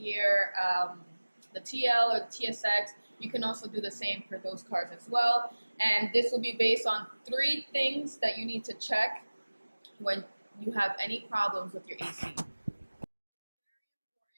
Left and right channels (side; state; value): both; inverted; correlation -1.00